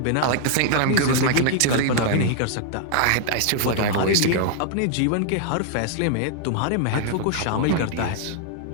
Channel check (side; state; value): both; different; correlation -0.01